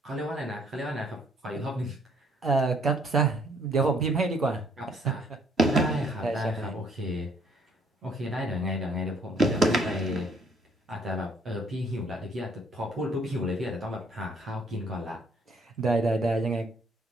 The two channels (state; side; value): normal; both; correlation 0.64